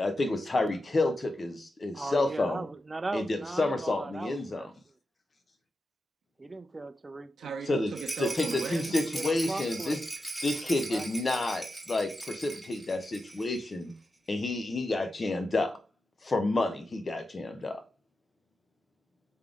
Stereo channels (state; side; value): normal; both; correlation 0.89